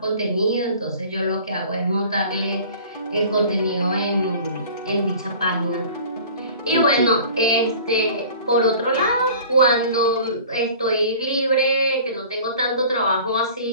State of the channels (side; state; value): both; inverted; correlation -0.45